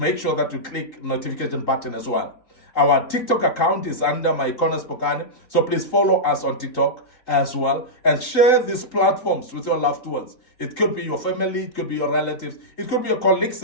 sure that you click notification button as well. Our TikTok account is under MIcornus Phokane, so please follow us on TikTok as well, and share these platforms with your loved ones. It could be your family, it could be your relatives, it could be your colleagues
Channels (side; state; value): right; late; 3.8 ms